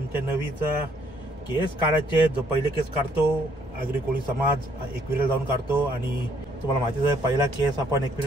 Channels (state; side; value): normal; both; correlation 0.67